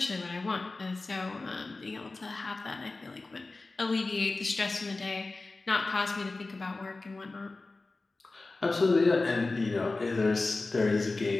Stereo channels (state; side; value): quieter; right; 3.4 dB